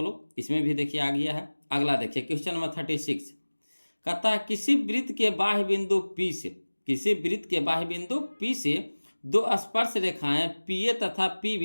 लोग, इसमें भी देखिए आ गया है। अगला देखिए क्वेश्चन नंबर 36 कहता है किसी वृत्त के बाह्य बिंदु P से, किसी वृत्त के बाह्य बिंदु P से दो स्पर्श रेखाएं PA तथा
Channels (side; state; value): both; inverted; correlation -1.00